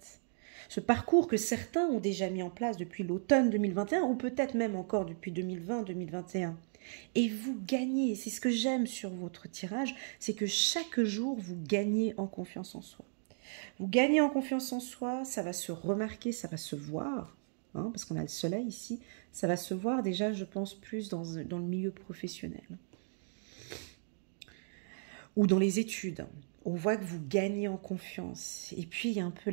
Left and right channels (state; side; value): silent; left; digital silence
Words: Ce parcours que certains ont déjà mis en place depuis l'automne 2021 ou peut-être même encore depuis 2020-2021. Et vous gagnez, c'est ce que j'aime sur votre tirage, c'est que chaque jour vous gagnez en confiance en soi. Vous gagnez en confiance en soi, ça va se remarquer, ça va se voir, hein, parce qu'on a le soleil ici, ça va se voir déjà, je pense, plus dans le milieu professionnel. Ou dans les études. On voit que vous gagnez en confiance. Et puis, il y a un peu